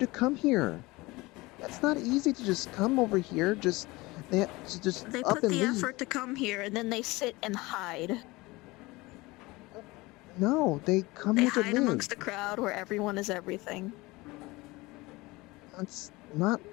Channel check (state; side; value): quieter; right; 22.0 dB